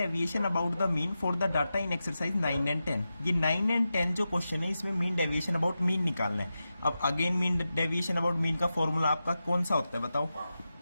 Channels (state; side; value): inverted; both; correlation -0.91